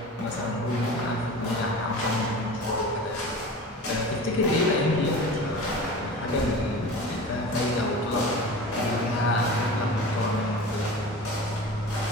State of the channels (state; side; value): normal; both; correlation 0.35